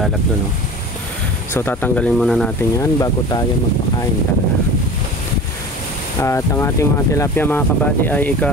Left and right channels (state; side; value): normal; both; correlation 0.36